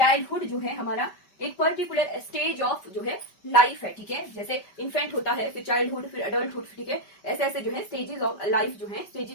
जो है हमारा एक पर्टिकुलर स्टेज ऑफ जो है लाइफ है, ठीक है। जैसे इन्फेंट होता है, फिर चाइल्डहुड, फिर अडल्टहुड, ठीक है। ऐसे ऐसे जो है स्टेजेस ऑफ लाइफ जो है,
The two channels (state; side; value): late; right; 5.2 ms